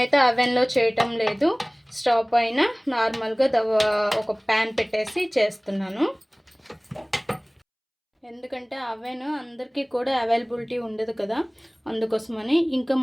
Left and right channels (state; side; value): identical; both; correlation 1.00